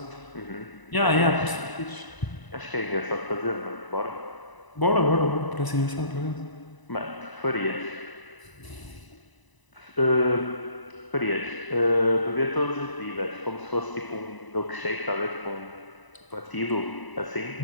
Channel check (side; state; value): right; late; 1.0 ms